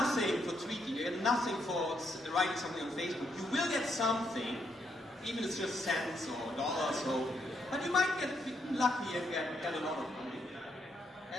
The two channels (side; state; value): both; normal; correlation 0.76